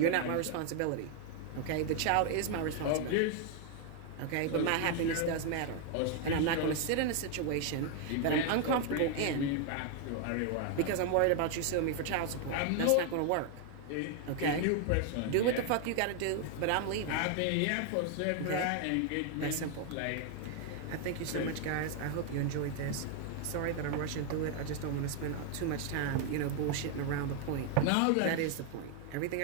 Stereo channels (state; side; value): different; both; correlation 0.00